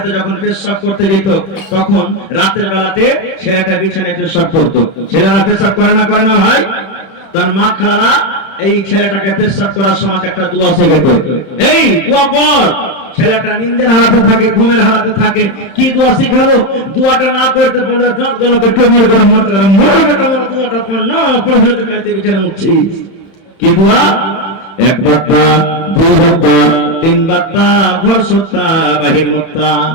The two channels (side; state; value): right; late; 31 ms